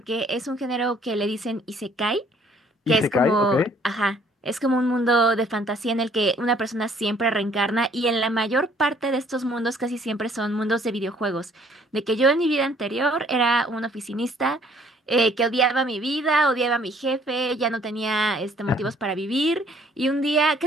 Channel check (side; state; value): both; normal; correlation 0.60